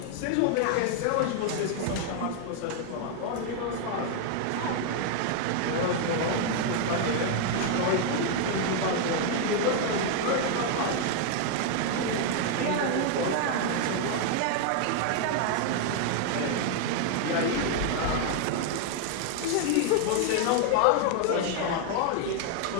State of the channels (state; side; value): different; both; correlation 0.00